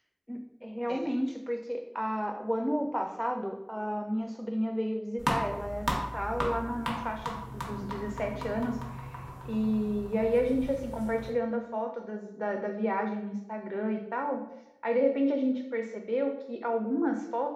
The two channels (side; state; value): both; identical; correlation 1.00